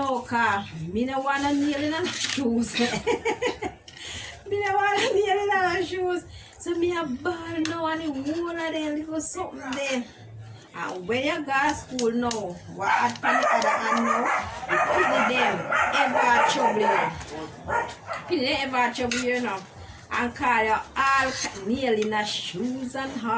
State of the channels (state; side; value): identical; both; correlation 1.00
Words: because I don't want to nail in the shoes. I don't want to nail in the shoes. So I have ball now and the whole of them little something there. And when you go to school now, what happen the other hand now, the them ever trouble you. People ever trouble you now. And call you all nail in the shoes and